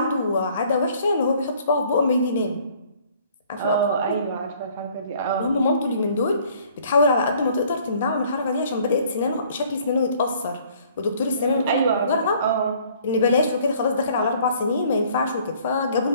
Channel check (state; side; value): inverted; both; correlation -0.58